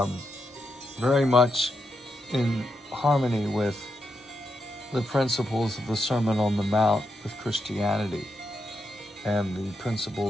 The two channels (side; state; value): both; normal; correlation 0.84